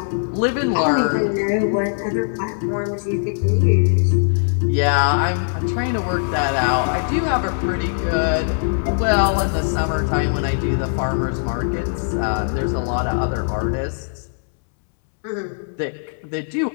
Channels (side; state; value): right; silent; 65 dB below the other